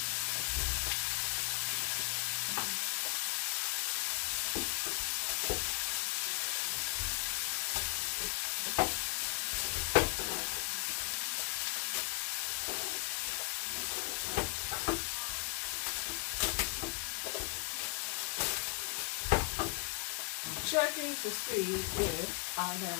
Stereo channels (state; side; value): quieter; right; 27.0 dB